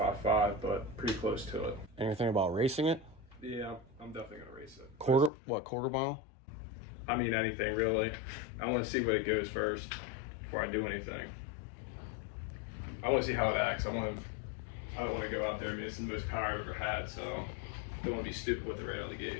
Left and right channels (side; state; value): right; drops out; at 5.3 s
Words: but pretty close to it. Anything about racing it? Yeah, I'm definitely going to race it. Quarter mile? I mean, anything really. I want to see where it goes first before I do anything. I want to see how it acts. I don't want to go out there. I mean, it's the most power I've ever had, so I don't want to be stupid with it right out of the